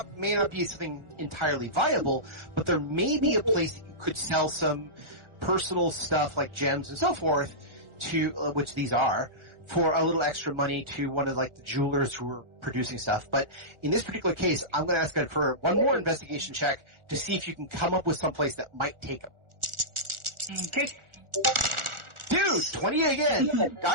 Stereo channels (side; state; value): left; late; 1.4 ms